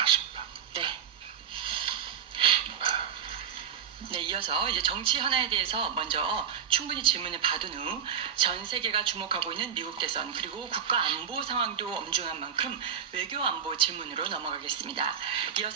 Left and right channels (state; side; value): quieter; left; 7.9 dB